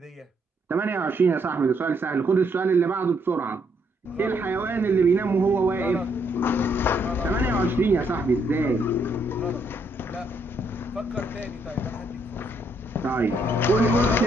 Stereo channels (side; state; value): both; normal; correlation 0.73